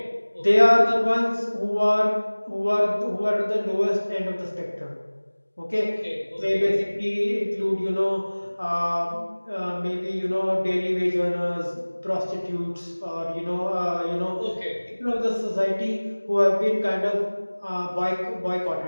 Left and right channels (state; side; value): inverted; both; correlation -1.00